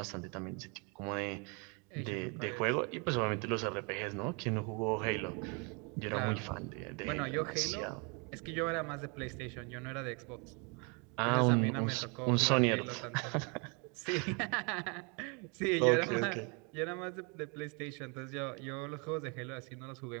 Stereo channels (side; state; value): left; quieter; 33.2 dB